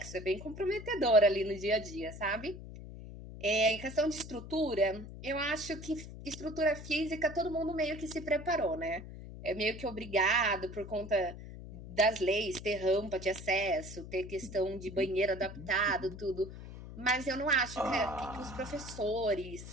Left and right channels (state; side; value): noise; left; hum, 12 dB below the sound